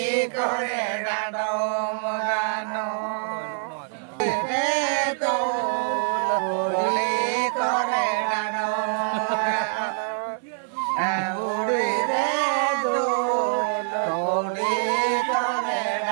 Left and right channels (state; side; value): silent; left; digital silence